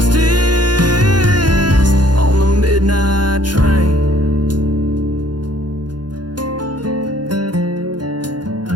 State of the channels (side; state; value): left; late; 0.70 ms